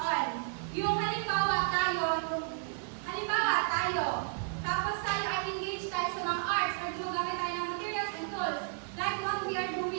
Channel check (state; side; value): silent; left; 56 dB below the other